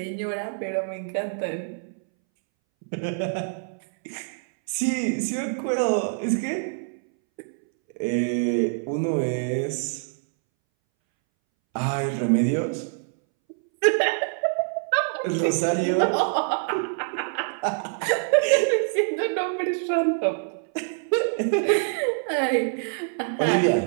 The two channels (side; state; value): left; silent; 62 dB below the other